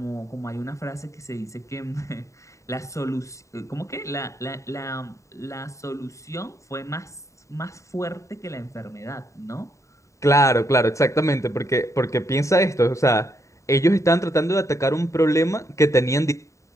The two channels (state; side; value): late; right; 0.15 ms